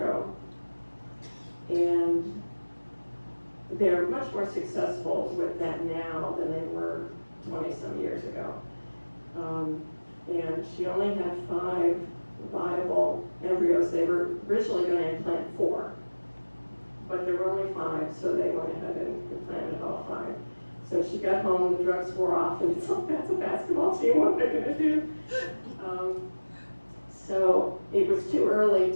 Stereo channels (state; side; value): inverted; both; correlation -1.00